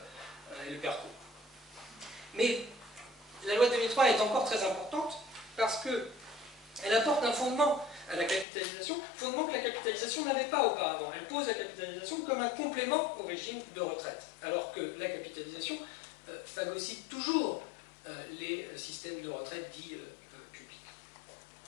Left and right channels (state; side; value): drops out; right; at 8.5 s